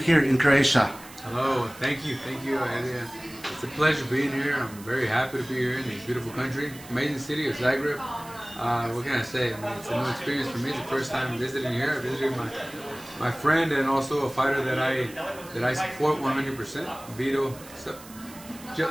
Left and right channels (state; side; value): noise; right; hiss, 19 dB below the sound